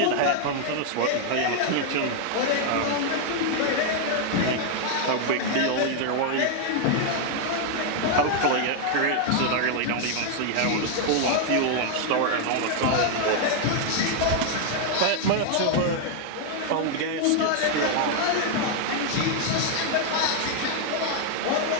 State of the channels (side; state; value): both; different; correlation 0.00